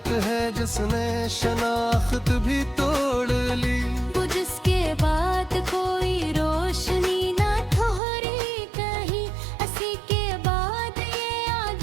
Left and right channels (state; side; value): drops out; left; at 8.0 s